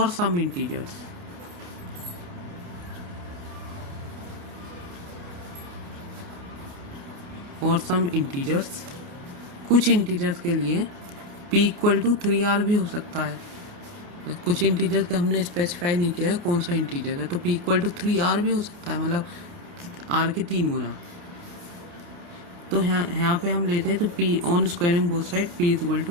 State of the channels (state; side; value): late; left; 28 ms